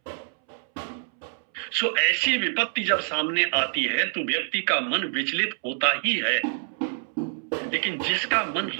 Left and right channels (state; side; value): silent; left; 61 dB below the other